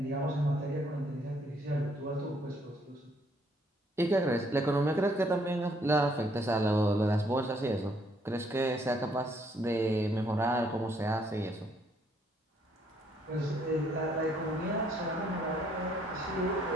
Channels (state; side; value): normal; both; correlation 0.68